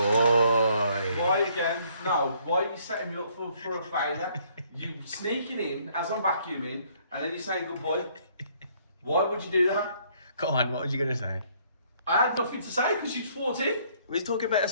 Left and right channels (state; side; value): inverted; both; correlation -0.64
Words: Why again? No. Why are you setting me up for a failure? You sneaking in as I'm vacuuming, and then you're saying good boy. Why would you do that? Go on, what were you going to say? I had nothing to say because you fought in. We was talking about a